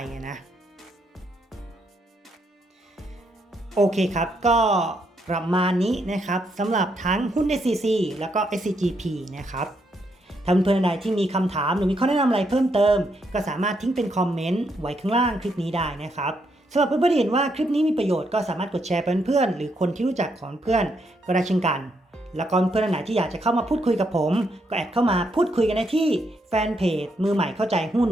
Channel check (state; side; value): normal; both; correlation 0.77